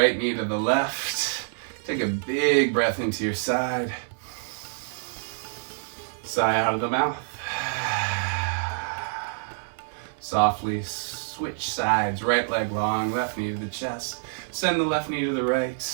knee to the left. Take a big breath into your side. Sigh out of the mouth. Softly switch sides. Right leg long, left knee to the chest. Send the left knee to the right.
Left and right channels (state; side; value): silent; left; 60 dB below the other